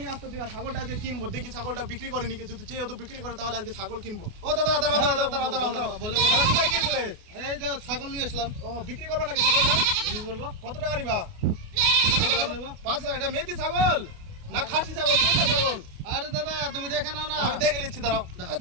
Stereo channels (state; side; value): late; left; 28 ms